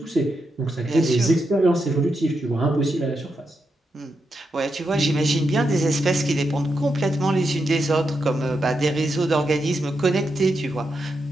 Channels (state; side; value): normal; both; correlation 0.85